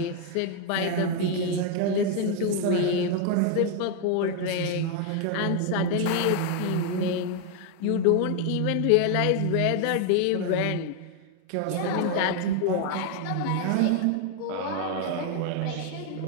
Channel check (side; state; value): both; different; correlation 0.01